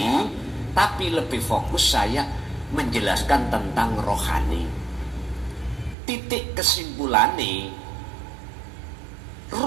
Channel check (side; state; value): left; drops out; at 6.0 s